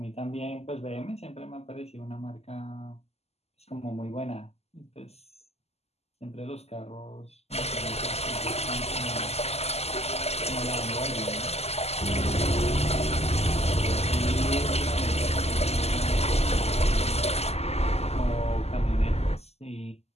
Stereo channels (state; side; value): late; right; 0.30 ms